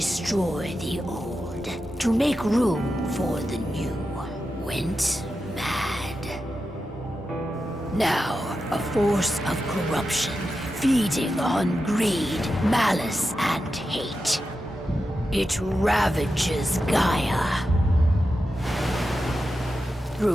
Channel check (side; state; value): both; normal; correlation 0.90